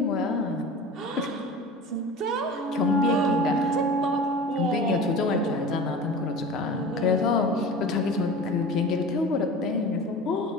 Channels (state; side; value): normal; both; correlation 0.36